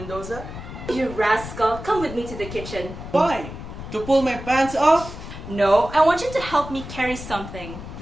You rascal, come with me to the kitchen. Why? To pull my pants off? No, I want you to help me carry something.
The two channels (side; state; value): left; noise; rumble, 11 dB below the sound